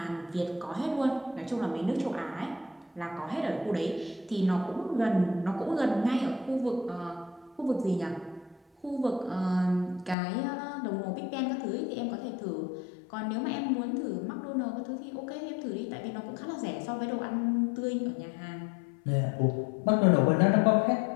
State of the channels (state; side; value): drops out; right; at 10.2 s